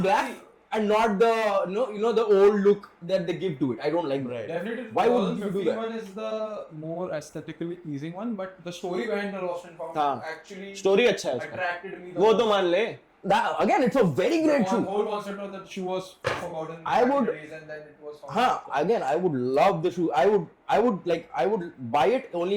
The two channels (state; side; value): identical; both; correlation 1.00